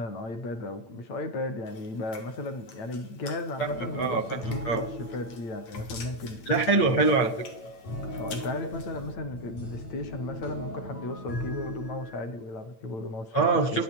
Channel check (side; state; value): right; late; 8.9 ms